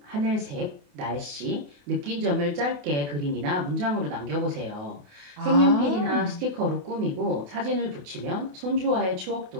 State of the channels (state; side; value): late; left; 28 ms